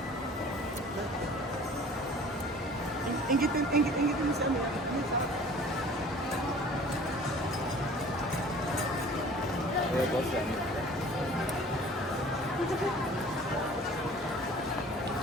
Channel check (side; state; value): both; normal; correlation 0.47